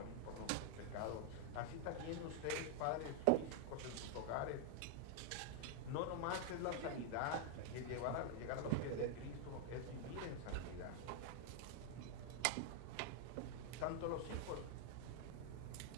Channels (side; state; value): both; different; correlation 0.00